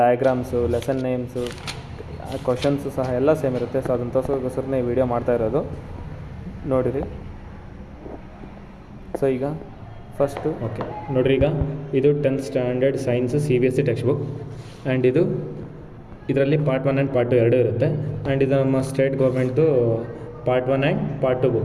lesson names, questions ಸಹ ಎಲ್ಲ ಸೇಮ್ ಇರುತ್ತೆ. ಸೊ ಅದನ್ನು ತೋರಿಸೋಕ್ಕೋಸ್ಕರನೇ ಈ ವಿಡಿಯೋ ಮಾಡ್ತಾ ಇರೋದು, ನೋಡಿರಿ. ಸೊ ಈಗ ಫಸ್ಟು ನೋಡಿರಿ, ಈಗ ಇದು 10th standard science CBSE text book. And ಇದರಲ್ಲಿ ಪಾರ್ಟ್ 1 ಆ್ಯಂಡ್ ಪಾರ್ಟ್ 2 ಎರಡೂ ಇರುತ್ತೆ. ಆ್ಯಂಡ್ ಇದು ನಮ್ಮ ಸ್ಟೇಟ್ ಗೌರ್ಮೆಂಟ್ದು part 1 and part 2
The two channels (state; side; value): identical; both; correlation 1.00